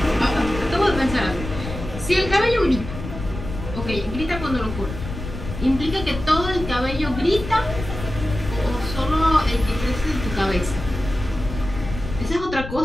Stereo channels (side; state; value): left; noise; rumble, 8 dB below the sound